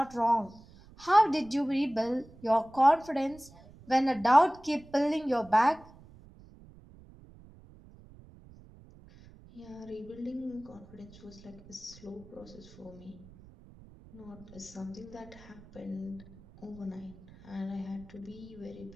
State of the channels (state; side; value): noise; right; rumble, 22 dB below the sound